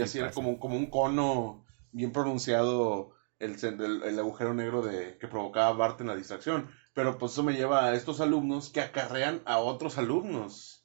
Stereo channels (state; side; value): silent; left; digital silence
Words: así era pasa. como un cono bien pronunciado el agujero negro que provocaba Bart en la distracción. Pero pues eso me lleva a estos alumnos que acarrean a otros